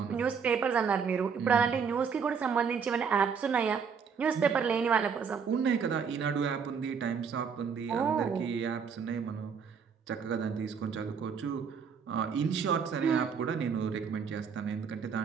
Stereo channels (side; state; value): left; quieter; 6.3 dB